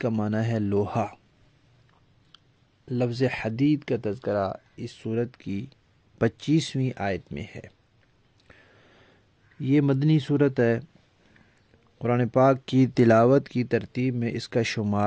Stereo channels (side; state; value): both; identical; correlation 1.00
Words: معنی ہے لوہا۔ لفظ حدید کا تذکرہ اس سورت کی 25ویں آیت میں ہے۔ یہ مدنی سورت ہے۔ قرآن پاک کی تلاوت کی ترتیب میں اس کا